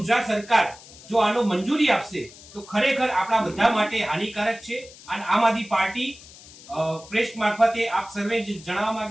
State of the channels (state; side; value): noise; left; hiss, 20 dB below the sound